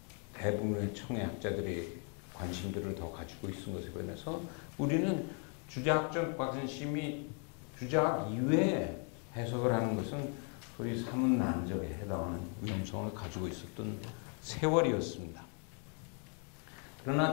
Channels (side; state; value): right; quieter; 39.9 dB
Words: 대부분의 청의 학자들이 관심들을 더 가지고 있은 것에 반해서 우리는 주자학적 관심이 주자학 이외에 해석을 하는 것은 소위 사문난적에 해당하는 위험성을 가지고 있었던 세월이었습니다. 그러나